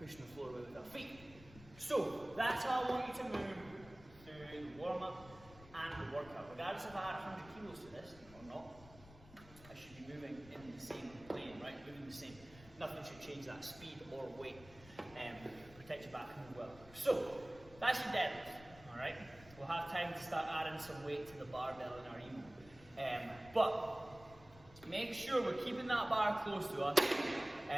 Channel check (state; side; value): noise; left; rumble, 20 dB below the sound